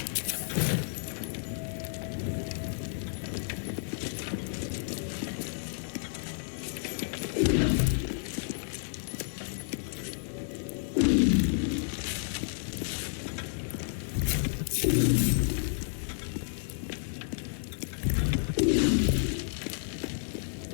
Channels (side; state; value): right; silent; digital silence